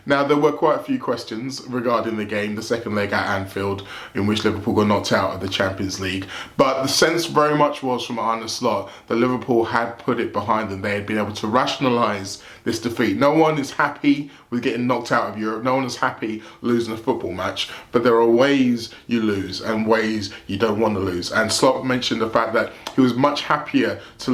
Now, there were quite a few questions regarding the game, the second leg at Anfield, in which Liverpool got knocked out of the Champions League. But the sense very much was from Arne Slot that Liverpool had put it behind them. They had been able to rationalise this defeat. No one is happy with getting knocked out of Europe. No one is happy losing a football match. But there are ways you lose and ways you don't want to lose. And Slot mentioned the fact that he was much happier to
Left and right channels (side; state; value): both; identical; correlation 1.00